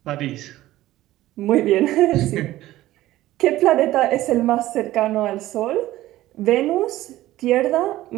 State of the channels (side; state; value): left; quieter; 15.6 dB